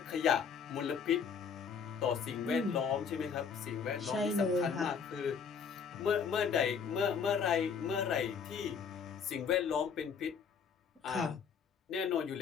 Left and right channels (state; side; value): quieter; right; 6.4 dB